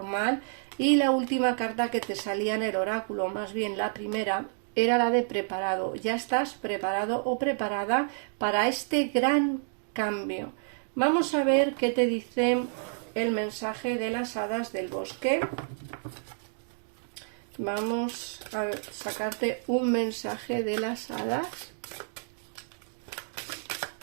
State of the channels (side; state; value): left; silent; digital silence